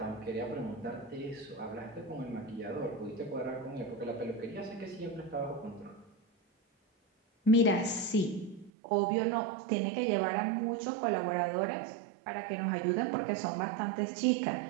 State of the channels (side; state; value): left; drops out; at 8.7 s